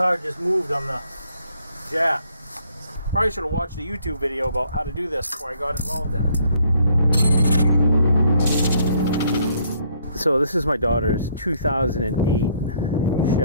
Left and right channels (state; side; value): inverted; both; correlation -0.66